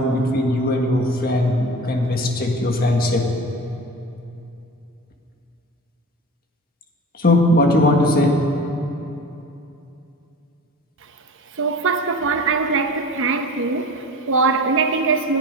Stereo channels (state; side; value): normal; both; correlation 0.36